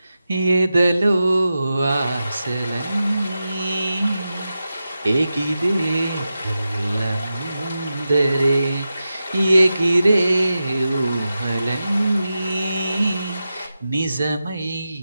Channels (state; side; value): inverted; both; correlation -0.91